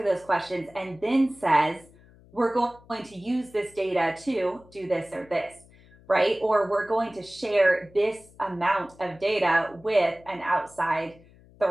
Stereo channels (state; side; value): noise; left; hum, 26 dB below the sound